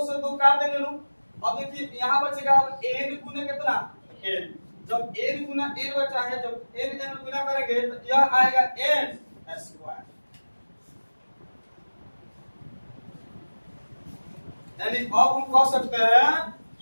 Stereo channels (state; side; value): inverted; both; correlation -1.00